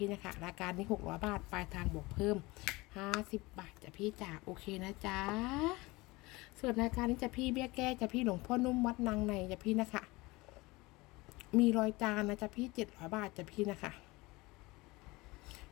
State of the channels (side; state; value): right; quieter; 22.4 dB